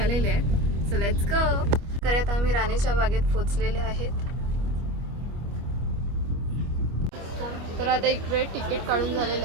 आहेत. So let's go. तर आता आम्ही राणीच्या बागेत पोहोचलेले आहेत. तर आता इकडे तिकीट काढून झालेले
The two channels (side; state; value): left; late; 25 ms